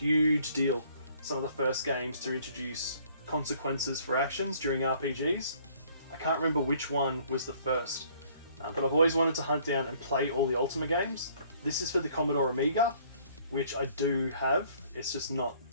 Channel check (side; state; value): both; inverted; correlation -0.59